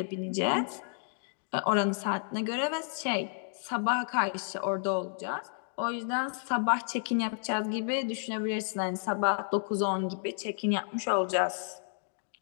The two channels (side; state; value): right; silent; digital silence